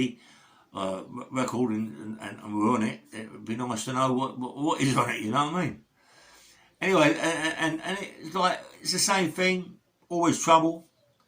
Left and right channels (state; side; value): identical; both; correlation 1.00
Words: record and we're on it, it would be nice to know what is on it, you know what I mean? Anyway, and it's like, it's the same thing, always trouble.